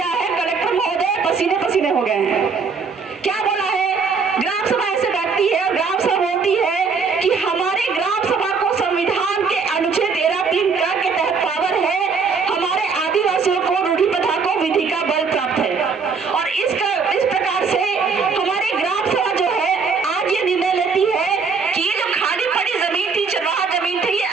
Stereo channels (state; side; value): quieter; left; 5.1 dB